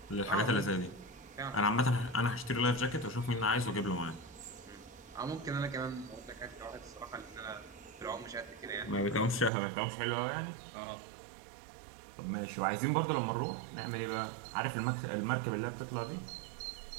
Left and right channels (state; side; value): drops out; left; at 9.5 s